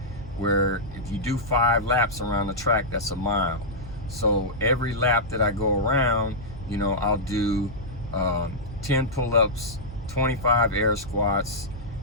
where if you do 5 laps around the track, that's a mile. So every lap that I go around, you know, I'll do 10 pull-ups, 25 air squats,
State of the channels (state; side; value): normal; both; correlation -0.11